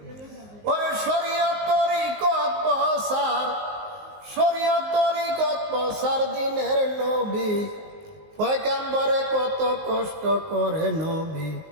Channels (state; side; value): late; left; 19 ms